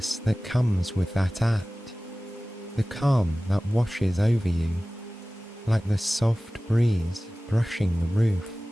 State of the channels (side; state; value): both; normal; correlation 0.97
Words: that comes with that act, the calm that washes over you, like the soft breeze brushing the roof.